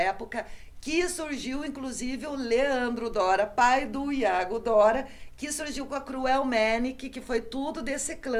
que surgiu, inclusive, o Leandro Dora, pai do Iago Dora, que surgiu com a Cruel Manic, que foi tudo desse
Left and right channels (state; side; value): identical; both; correlation 1.00